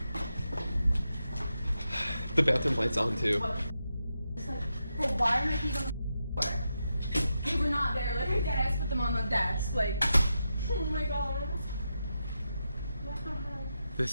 The bathroom light's on too. It's like, bro, why are my keys on the floor? They were not there. Like, I deadass put them on the desk. Like, oh my god. What the hell?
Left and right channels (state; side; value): inverted; both; correlation -0.87